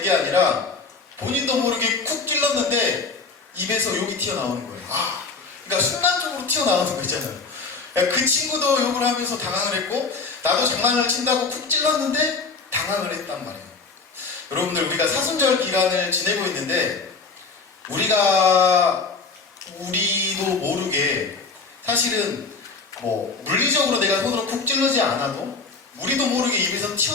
게 아니라 본인도 모르게 쿡 찔렀는데 입에서 욕이 튀어나오는 거예요. 그러니까 순간적으로 튀어나오는 거 있잖아요. 그 친구도 욕을 하면서 당황을 했고 나도 장난을 친다고 쿡 찔렀는데 당황을 했단 말이에요. 여러분들, 우리가 사순절 기간을 지내고 있는데 우리도 모르게 사실은 물리적으로 내가 손으로 쿡 찔르지 않아도 우리도 모르게 입에서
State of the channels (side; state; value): right; quieter; 4.4 dB